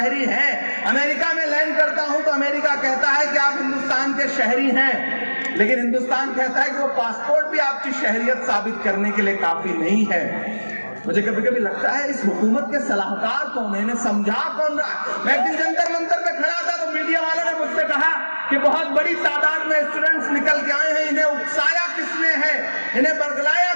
हैं। अमेरिका में लैंड करता हूं तो अमेरिका कहता है कि आप हिंदुस्तान के शहरी हैं। लेकिन हिंदुस्तान कहता है कि वो पासपोर्ट भी आपकी शहरियत साबित करने के लिए काफी नहीं है। मुझे कभी कभी लगता है इस हुकूमत के सलाहकार कौन है, इन्हें समझा कौन रहा। मैं एक दिन जंतर मंतर पे खड़ा था तो मीडिया वालों ने मुझसे कहा कि बहुत बड़ी तादाद में स्टूडेंट्स निकल के आए हैं, इन्हें उकसाया किसने है, इन्हें बरगलाया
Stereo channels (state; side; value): inverted; both; correlation -1.00